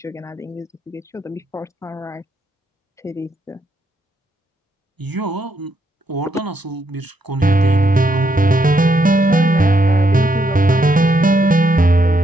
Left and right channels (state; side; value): normal; both; correlation 0.77